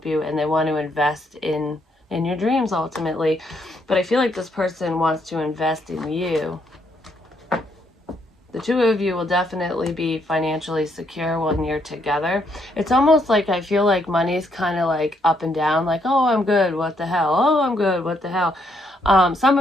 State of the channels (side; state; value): both; normal; correlation 0.74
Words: you and they want to invest in your dreams ultimately. But I feel like this person wants to invest in you. The two of you will definitely be financially secure when you're together. It's almost like I feel like money's kind of like up and down, like, oh, I'm good, what the hell? Oh, I'm good, what the hell? Some